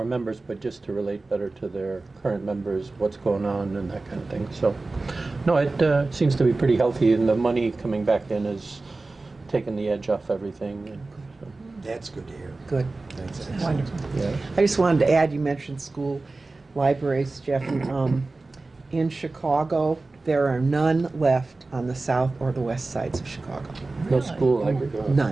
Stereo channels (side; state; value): left; quieter; 3.4 dB